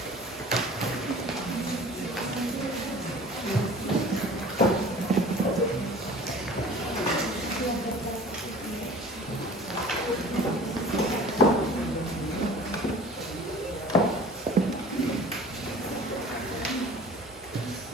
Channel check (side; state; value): both; normal; correlation 0.44